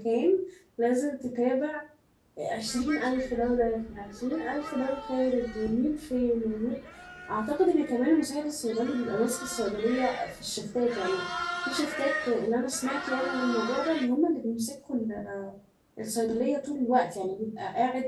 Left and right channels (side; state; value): both; identical; correlation 1.00